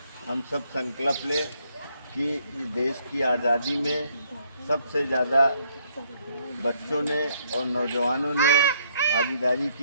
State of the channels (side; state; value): both; inverted; correlation -0.70